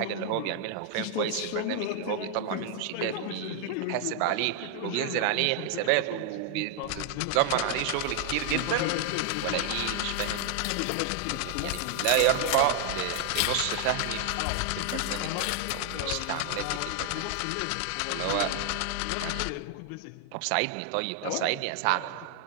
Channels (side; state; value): both; different; correlation 0.00